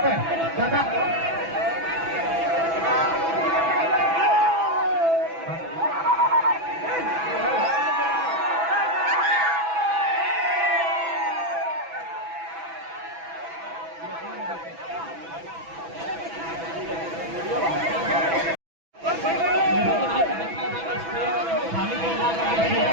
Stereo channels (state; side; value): late; left; 6.0 ms